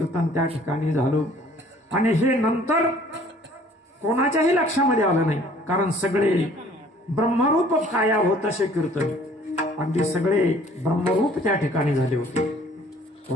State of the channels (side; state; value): both; normal; correlation 0.55